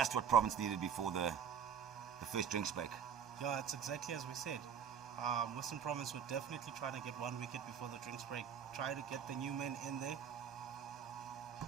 what Province needed before the first drinks break. Yeah, it's exactly as we said. Western Province were definitely trying to get 1 wicket before the drinks break. Try to get the new men in there.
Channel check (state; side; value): quieter; left; 7.8 dB